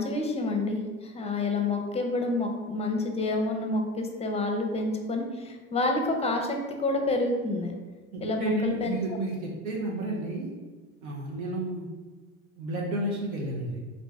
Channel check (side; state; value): both; normal; correlation 0.27